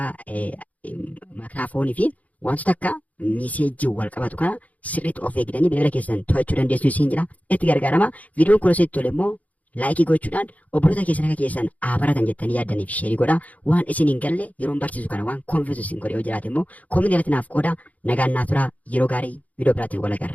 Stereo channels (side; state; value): right; late; 0.073 ms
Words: maayikiraafoonii fi wantoota akka miseejii wal qabatu kana sirriitti of eegdanii bilbila keessan to'achuu dandeessu isin jedha. Itti gargaaramaa. Viidiyoon kun asitti tole immoo laayikii gochuudhaan obboloota keessan akka keessan baratan jettanii yaaddaniif sheerii godhaa. Waan isin hin galle yeroon barsiisu kana waan konfiisu isin godhe yoo jiraate immoo koominii irratti naaf qoodaa. Nagaan naaf turaa. Yeroo gaarii viidiyoo biraatiin wal